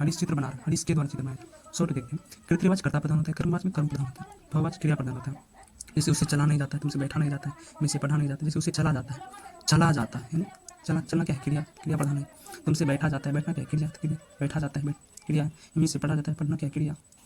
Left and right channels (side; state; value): both; identical; correlation 1.00